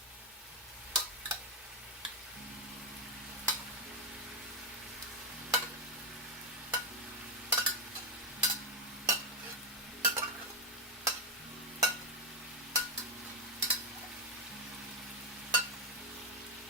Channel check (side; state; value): both; normal; correlation 0.05